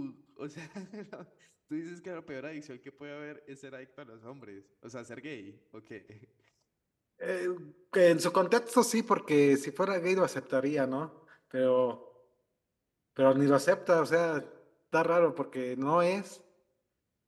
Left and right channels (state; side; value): identical; both; correlation 1.00